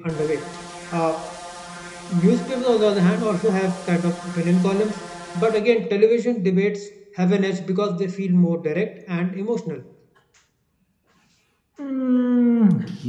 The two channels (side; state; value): both; identical; correlation 1.00